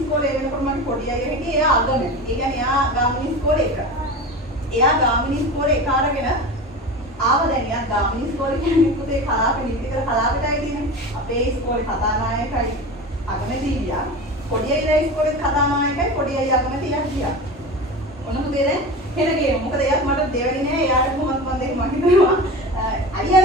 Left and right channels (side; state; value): both; normal; correlation 0.30